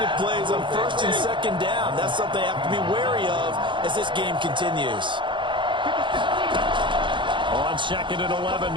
plays on 1st and 2nd down. That's something they have to be wary of as this game continues. On 2nd and 11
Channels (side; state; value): left; late; 0.23 ms